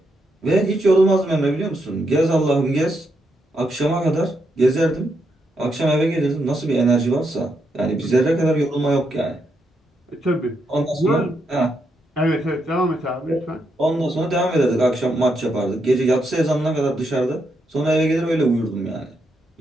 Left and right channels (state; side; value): normal; both; correlation 0.80